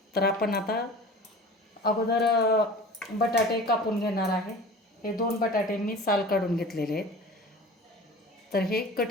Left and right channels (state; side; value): normal; both; correlation 0.39